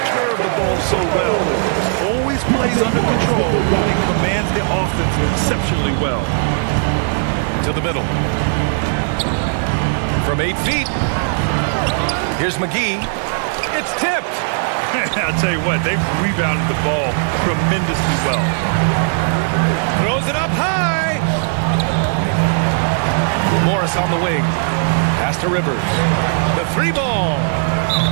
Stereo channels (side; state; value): left; silent; 58 dB below the other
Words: of the ball so well. Always plays under control and commands the offense exceptionally well. To the middle. From 8 feet. Here's McGee. It's tipped. I'll tell you what, they've rebounded the ball tremendously well. Throws it up high. Morris on the wing. Pass to Rivers. The 3-ball.